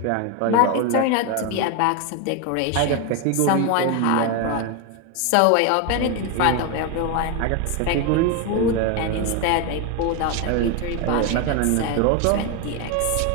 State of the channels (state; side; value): different; both; correlation 0.02